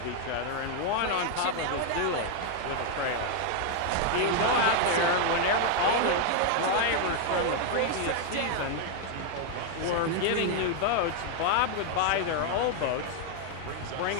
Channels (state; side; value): different; both; correlation 0.00